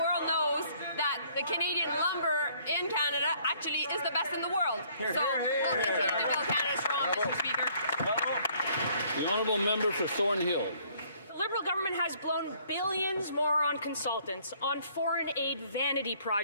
knows that the Canadian lumber in Canada actually is the best in the world. So we'll continue to build Canada strong, Mr. Speaker. The honourable member for Thornhill. The Liberal government has blown billions more on consultants, on foreign aid vanity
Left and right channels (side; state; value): both; inverted; correlation -0.61